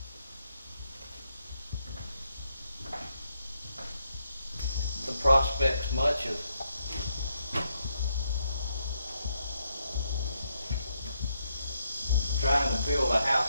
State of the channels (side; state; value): both; inverted; correlation -0.78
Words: The prospects much of trying to build a